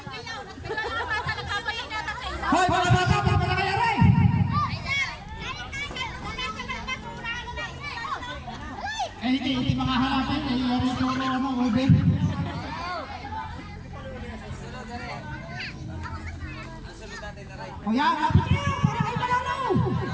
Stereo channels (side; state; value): both; identical; correlation 1.00